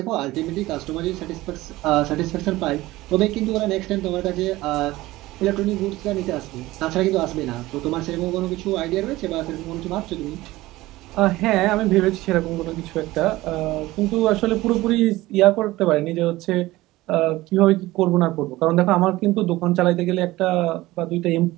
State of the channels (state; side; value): quieter; left; 18.2 dB